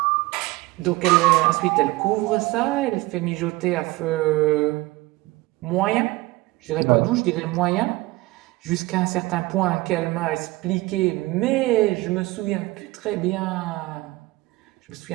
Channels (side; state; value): left; quieter; 20.7 dB